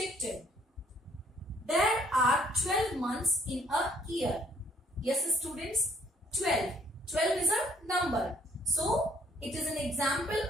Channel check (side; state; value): both; normal; correlation 0.63